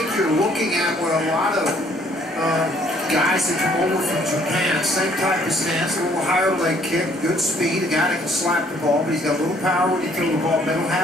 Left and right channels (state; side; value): normal; both; correlation 0.62